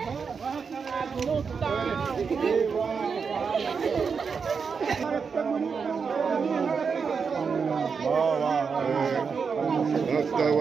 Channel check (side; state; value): left; quieter; 5.7 dB